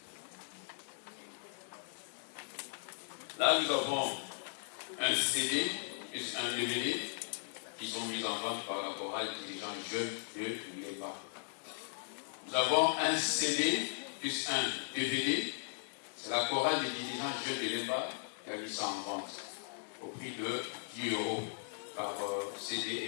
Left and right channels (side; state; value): right; silent; digital silence